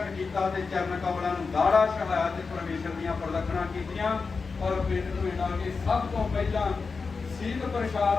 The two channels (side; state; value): right; quieter; 4.7 dB